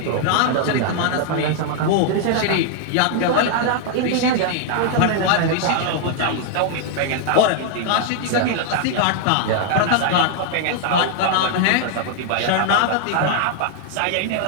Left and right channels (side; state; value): both; different; correlation 0.00